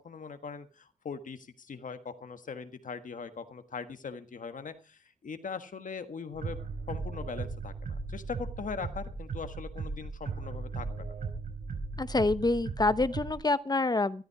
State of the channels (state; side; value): normal; both; correlation 0.65